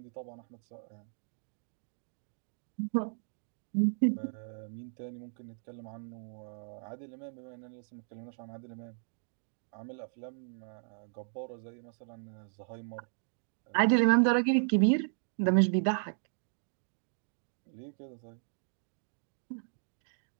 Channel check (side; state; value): left; silent; digital silence